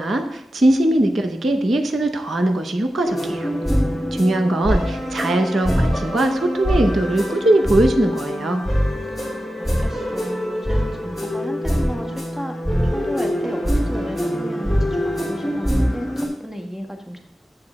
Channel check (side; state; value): both; normal; correlation 0.92